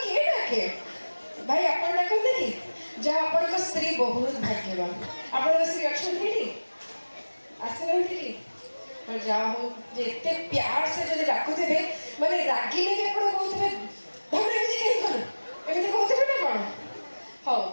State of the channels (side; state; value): both; inverted; correlation -1.00